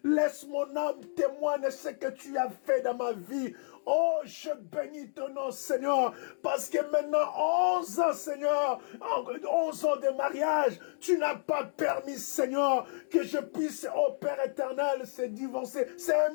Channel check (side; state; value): right; silent; digital silence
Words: laisse mon âme témoigner ce que tu as fait dans ma vie. Oh, je bénis ton nom, Seigneur, parce que maintenant, 11 ans, Seigneur, 11 ans de mariage, tu n'as pas permis, Seigneur, que je puisse, oh Père éternel, se divorcer. C'est un